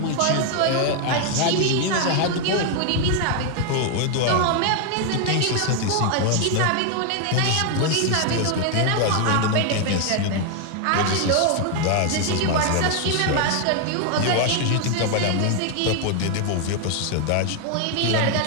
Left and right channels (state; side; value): different; both; correlation 0.00